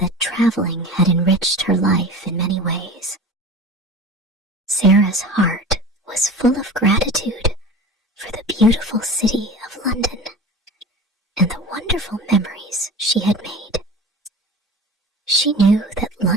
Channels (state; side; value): normal; both; correlation 0.36